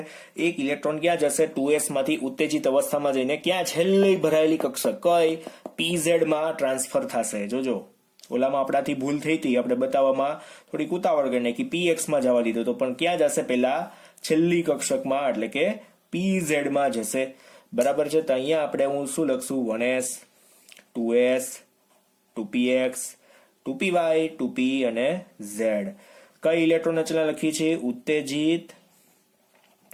એક ઇલેક્ટ્રોન ક્યાં જશે? 2s માંથી ઉત્તેજિત અવસ્થામાં જઈને ક્યાં છેલ્લી ભરાયેલી કક્ષક કઈ pz માં ટ્રાન્સફર થશે. જોજો ઓલામાં આપણાથી ભૂલ થઈ હતી, આપણે બતાવવામાં થોડીક ઉતાવળ કરીને કે px માં જવા દીધો તો પણ ક્યાં જશે? પહેલા છેલ્લી કક્ષકમાં એટલે કે pz માં જશે. બરાબર છે? તો અહીંયા આપણે હું શું લખશું? 1s 2s 2px 2py 2p અને z. કઈ ઇલેક્ટ્રોન રચના લખી છે? ઉત્તેજિત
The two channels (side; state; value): both; identical; correlation 1.00